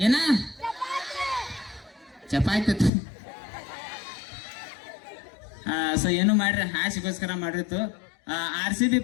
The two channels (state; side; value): drops out; right; at 2.9 s